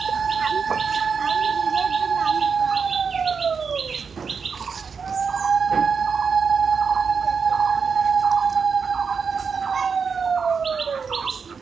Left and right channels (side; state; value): left; quieter; 5.8 dB